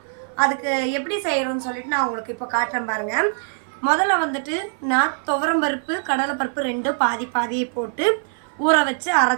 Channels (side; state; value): left; silent; 56 dB below the other